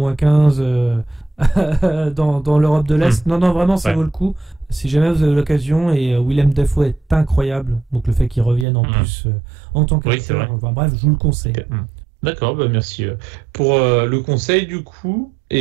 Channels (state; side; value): drops out; left; at 8.7 s